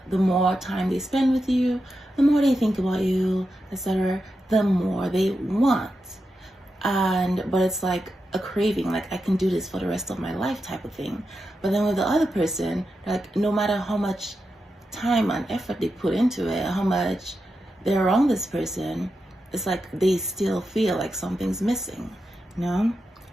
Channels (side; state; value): both; normal; correlation 0.88